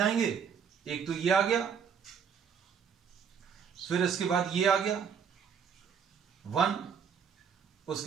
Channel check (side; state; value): left; quieter; 7.1 dB